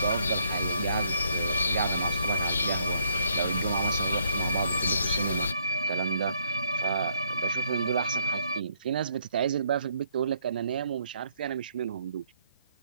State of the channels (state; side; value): inverted; both; correlation -0.69